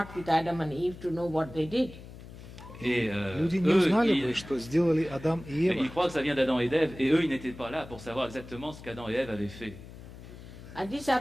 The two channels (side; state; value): left; noise; hum, 16 dB below the sound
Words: with Adam and Eve to know what they did. et Люди не eux, узнали бы, что сделали Адам и ils Ева. croient que ça vient d'Adam et d'Ève, et eux, ils n'étaient pas là pour savoir exactement ce qu'Adam et Ève avaient fait. And this